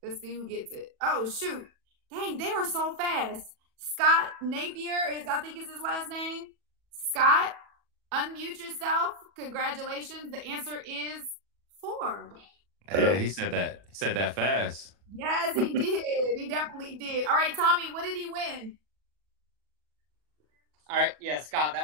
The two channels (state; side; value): late; left; 40 ms